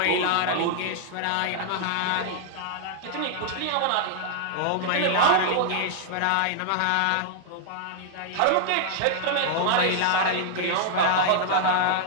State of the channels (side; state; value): both; different; correlation -0.01